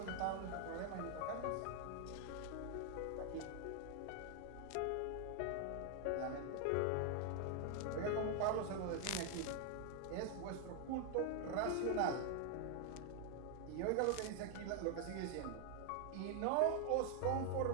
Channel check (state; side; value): different; both; correlation 0.00